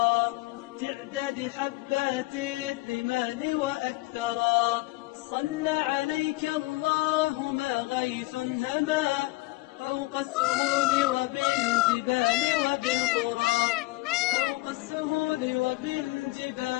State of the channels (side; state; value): right; quieter; 21.8 dB